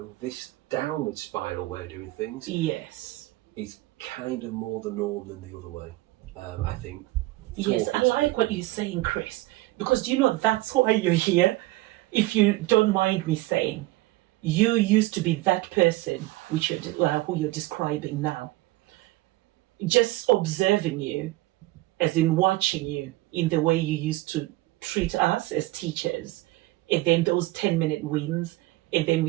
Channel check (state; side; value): quieter; left; 18.8 dB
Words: this downward spiral way of doing things is kind of more the norm than the other way, I think. Yes, I like what you're saying, Chris, because that's why you're here. If you don't mind me saying, you used to be that person who you're describing now. Just observing you, as in watching you in the way you used to treat us as teachers, and then those 10-minute wins, and then